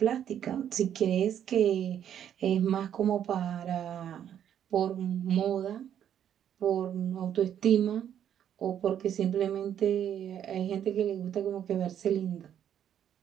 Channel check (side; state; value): left; quieter; 9.7 dB